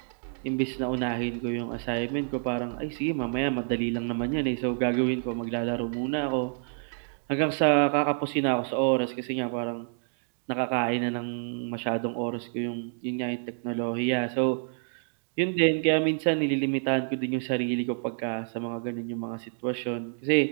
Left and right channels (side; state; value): left; silent; digital silence